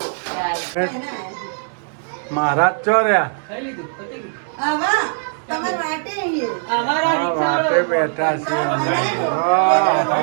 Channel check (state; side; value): silent; left; digital silence